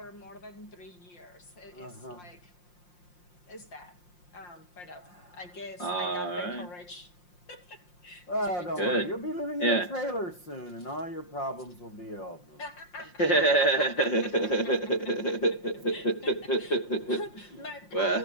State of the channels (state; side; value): late; right; 5.6 ms